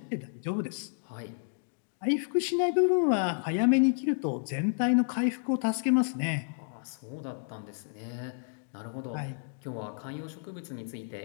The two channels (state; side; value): silent; right; digital silence